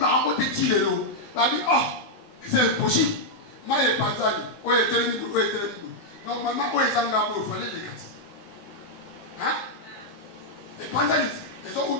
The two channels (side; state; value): right; late; 20 ms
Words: te tilelo. Babi oh, c'est impossible. Maye Panzani, oye telemi, oye telemi. Normalement, oye Zanga il fallait les gâter. Hein? Les Panzani, ils ont où